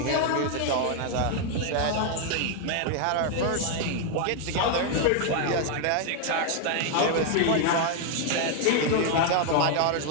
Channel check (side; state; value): both; different; correlation 0.00